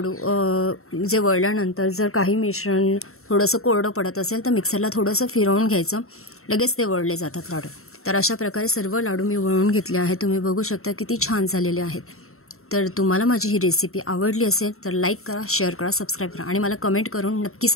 जे वळल्यानंतर जर काही मिश्रण थोडंसं कोरडं पडत असेल तर मिक्सरला थोडंसं फिरवून घ्यायचं, लगेच ते वळले जातात लाडू. तर अशा प्रकारे सर्व लाडू मी वळून घेतले आहेत. तुम्ही बघू शकता किती छान झालेले आहेत. तर तुम्हाला माझी ही रेसिपी आवडली असेल तर लाईक करा, शेअर करा, सबस्क्राईब करा आणि मला कमेंट करून नक्की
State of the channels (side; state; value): right; late; 0.63 ms